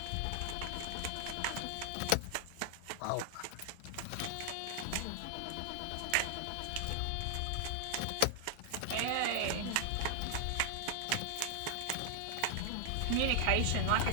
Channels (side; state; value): both; different; correlation 0.00